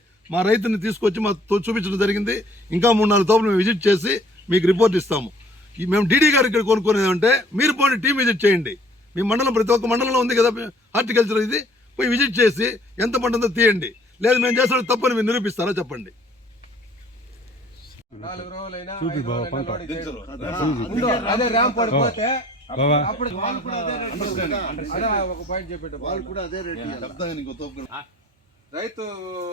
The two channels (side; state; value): both; normal; correlation 0.57